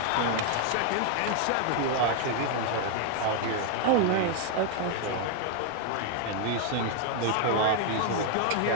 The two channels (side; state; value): both; different; correlation 0.00